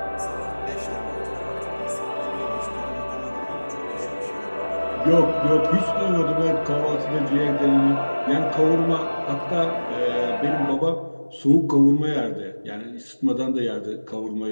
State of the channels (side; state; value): both; inverted; correlation -1.00